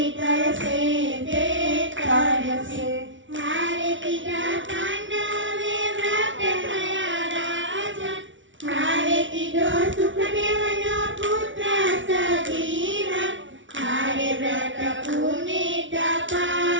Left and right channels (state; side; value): late; left; 0.56 ms